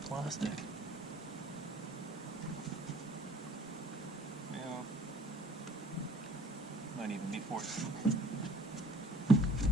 plastic. Well, might even be 14.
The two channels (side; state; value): both; normal; correlation 0.51